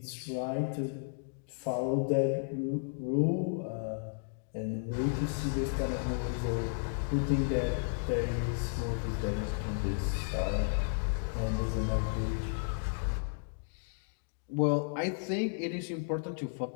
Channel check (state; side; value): silent; right; digital silence